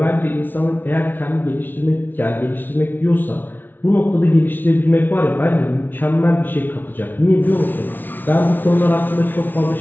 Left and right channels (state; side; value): late; right; 0.090 ms